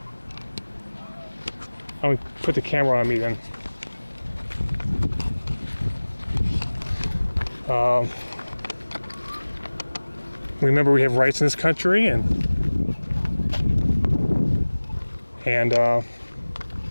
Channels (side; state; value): both; inverted; correlation -1.00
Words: I'm going to put the camera on me then. Remember, we have rights in this country, and